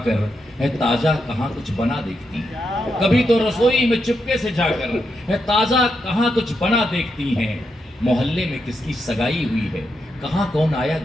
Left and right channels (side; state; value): both; normal; correlation 0.83